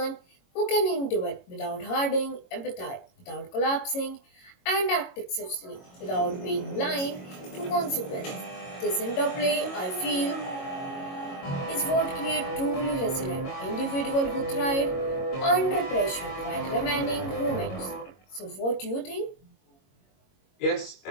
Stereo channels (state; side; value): late; right; 22 ms